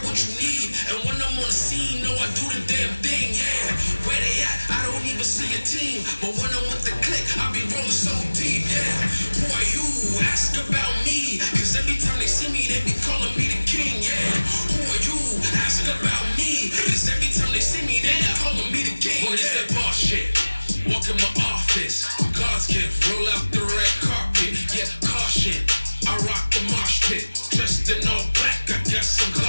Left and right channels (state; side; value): inverted; both; correlation -1.00